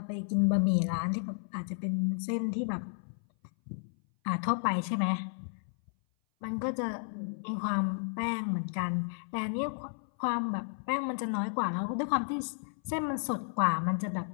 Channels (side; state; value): right; silent; 56 dB below the other